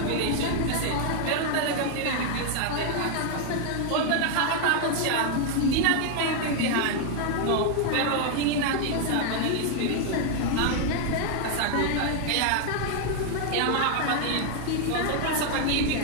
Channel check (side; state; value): both; different; correlation 0.00